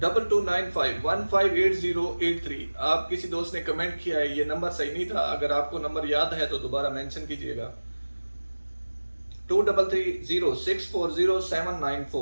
आप किसी दोस्त ने कमेंट किया है, ये नंबर सही नहीं था, अगर आपको नंबर याद है तो दोबारा मेंशन कीजिएगा।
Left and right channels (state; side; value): inverted; both; correlation -1.00